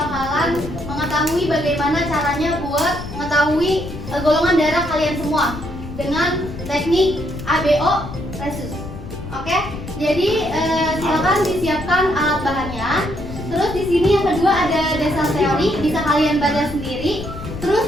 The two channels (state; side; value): noise; left; rumble, 10 dB below the sound